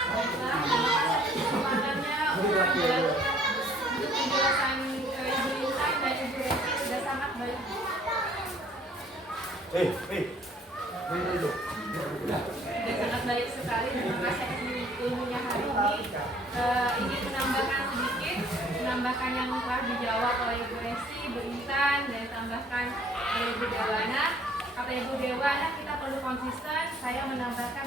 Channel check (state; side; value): normal; both; correlation 0.58